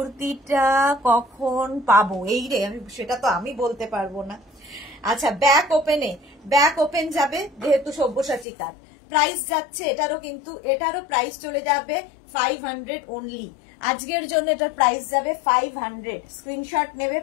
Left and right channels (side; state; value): right; drops out; at 8.5 s